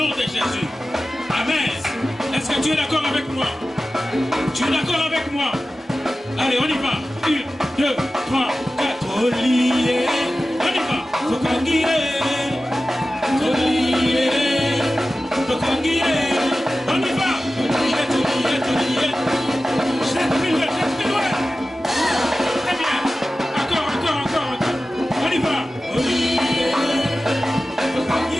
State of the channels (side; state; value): both; normal; correlation 0.95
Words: de Jésus. Amen. Est-ce que tu es d'accord avec moi? Tu es d'accord avec moi? Allez, on y va. 1, 2, 3, 4. Olié. On y va. Tokangire. Olié. Tokangire. On y va. Olié. Jette plus loin. Très bien. Encore. On y va. Olié.